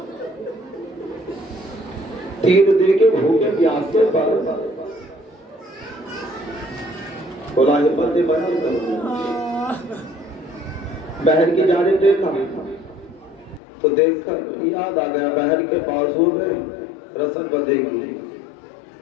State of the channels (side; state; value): right; drops out; at 13.6 s